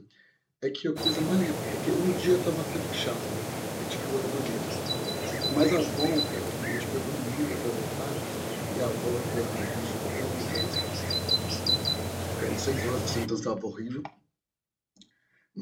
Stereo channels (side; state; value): both; identical; correlation 1.00